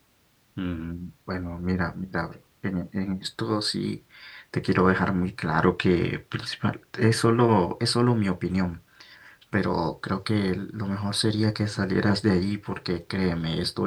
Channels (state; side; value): identical; both; correlation 1.00